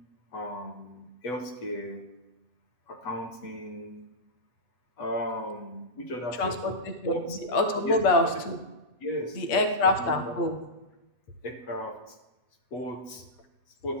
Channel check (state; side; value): late; right; 8.2 ms